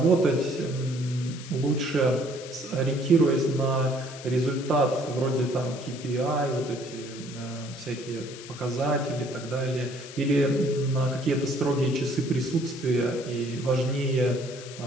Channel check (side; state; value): left; noise; hiss, 15 dB below the sound